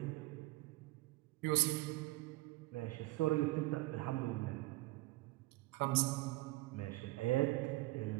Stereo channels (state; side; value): quieter; left; 20.4 dB